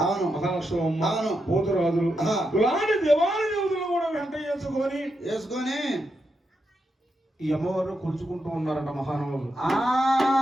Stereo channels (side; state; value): both; normal; correlation 0.84